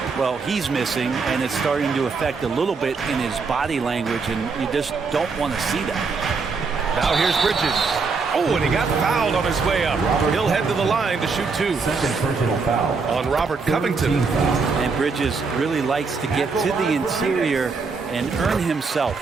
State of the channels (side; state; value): left; quieter; 4.7 dB